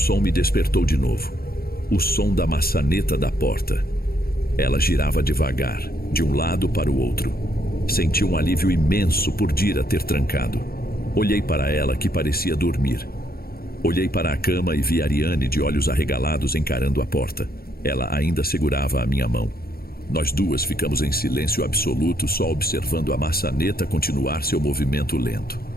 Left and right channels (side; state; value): right; late; 0.44 ms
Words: me despertou de novo. O som da maçaneta da porta. Ela girava devagar, de um lado para o outro. Senti um alívio imenso por Dira ter trancado. Olhei para ela, que parecia dormir. Olhei para a cama e vi Ariane de olhos arregalados encarando a porta. Ela ainda segurava a minha mão. Nós duas ficamos em silêncio absoluto, só observando a maçaneta continuar seu movimento lento.